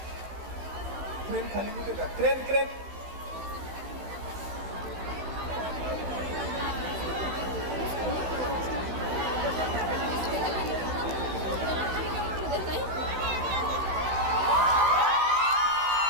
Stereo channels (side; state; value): left; late; 16 ms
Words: खाली कुठे का क्रेन